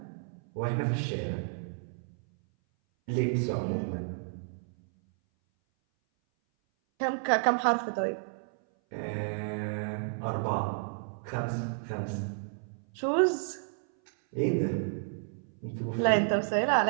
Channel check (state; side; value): silent; left; 57 dB below the other